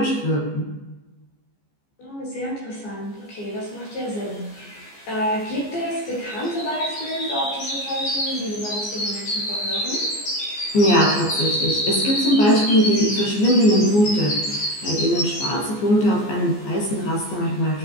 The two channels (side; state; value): right; late; 14 ms